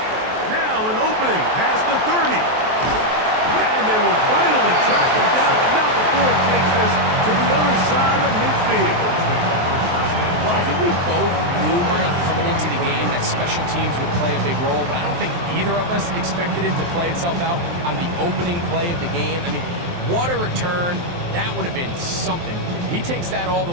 Now an opening past the 30. And they will finally track him down, but not before he takes this to the other side of midfield. Well, I think we both knew, Mike, coming into the game that special teams would play a big role, but I don't think either of us expected it to play itself out on the opening play of the game. I mean, what a return. That would have been something. He takes that all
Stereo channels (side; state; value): left; late; 23 ms